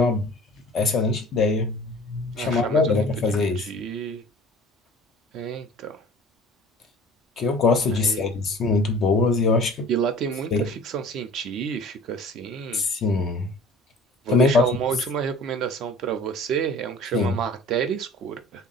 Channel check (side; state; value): both; normal; correlation 0.45